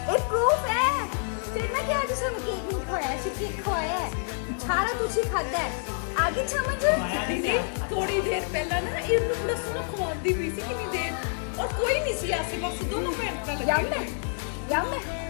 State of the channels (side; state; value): right; silent; 60 dB below the other